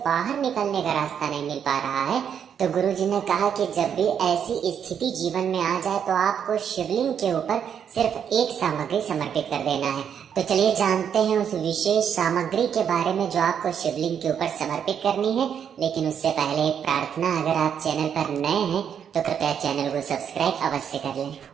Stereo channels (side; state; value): left; quieter; 8.1 dB